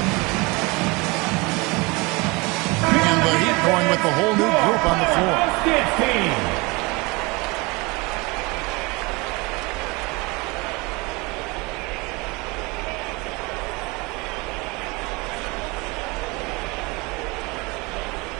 And the Heat going with the whole new group on the floor. Powerhouse Dance Team.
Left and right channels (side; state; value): left; quieter; 26.0 dB